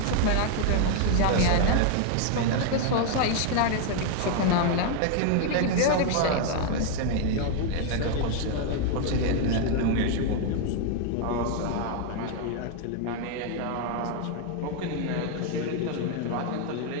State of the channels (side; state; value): both; different; correlation 0.00